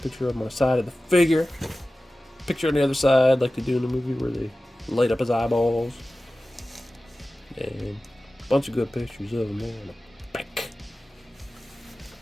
of him on the side of the figure. Picture on the other side, like they do in the movie, where they light up his eyeballs. And a bunch of good pictures of him there on the back.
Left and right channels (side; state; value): both; normal; correlation 0.96